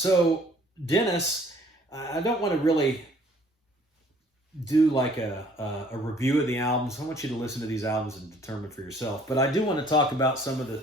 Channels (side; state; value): both; normal; correlation 0.58